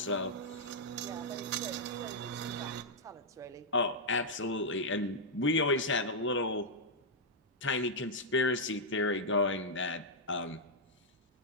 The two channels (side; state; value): both; normal; correlation -0.06